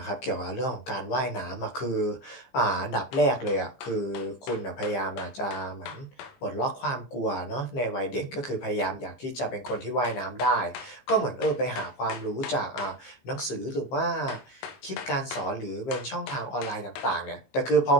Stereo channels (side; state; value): right; late; 15 ms